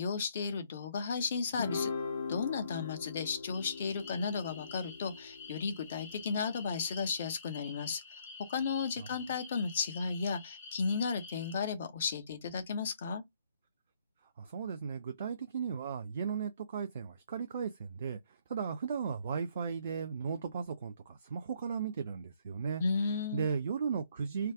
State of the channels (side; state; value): both; inverted; correlation -0.67